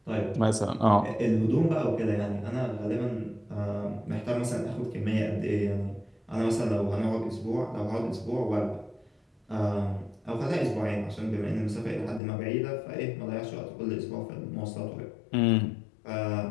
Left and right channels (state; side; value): drops out; right; at 12.2 s